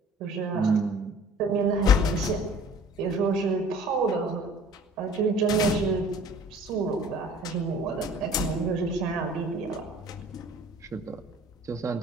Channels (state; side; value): normal; both; correlation 0.49